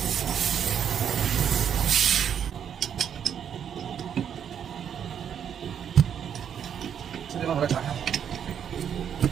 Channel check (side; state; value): left; quieter; 8.5 dB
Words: 这地方把它打开。